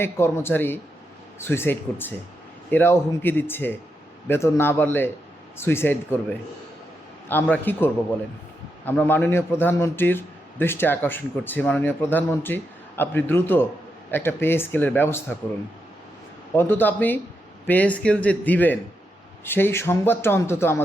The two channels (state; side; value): normal; both; correlation 0.84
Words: কর্মচারী সুইসাইড করছে। এরাও হুমকি দিচ্ছে বেতন না বাড়লে সুইসাইড করবে। আমরা কি করব বলেন? আমরা মাননীয় প্রধানমন্ত্রীর দৃষ্টি আকর্ষণ করছি। মাননীয় প্রধানমন্ত্রী, আপনি দ্রুত একটা পে স্কেলের ব্যবস্থা করুন। অন্তত আপনি পে স্কেল যে দিবেন সেই সংবাদটা অন্তত